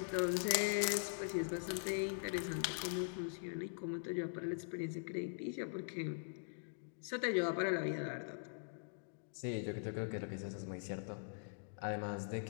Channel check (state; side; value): silent; right; digital silence